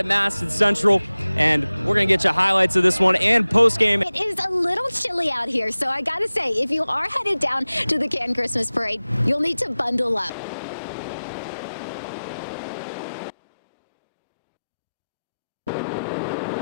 Madison Central, and we're going to get you highlights of this one and post-game. It is a little chilly out here, so I got to say, if you are headed down to the Canton Christmas Parade, you'll need to bundle up.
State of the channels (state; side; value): inverted; both; correlation -0.97